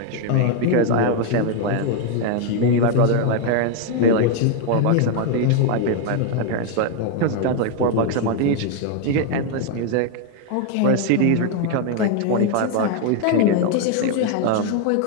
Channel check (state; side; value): different; both; correlation 0.00